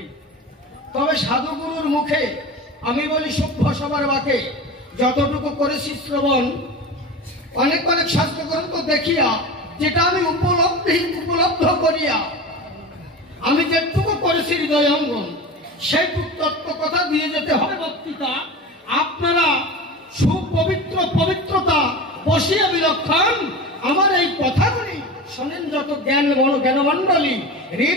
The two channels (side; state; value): both; normal; correlation 0.30